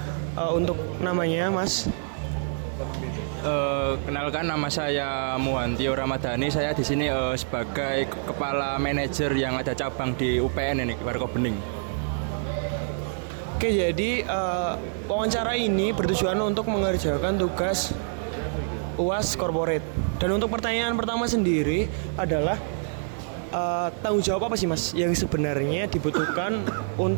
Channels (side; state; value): left; silent; 61 dB below the other